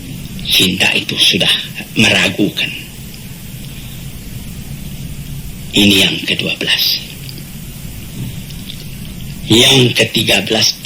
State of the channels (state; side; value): identical; both; correlation 1.00